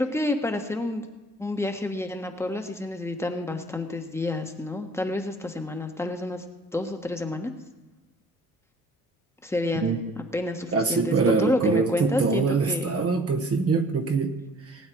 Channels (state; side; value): normal; both; correlation 0.53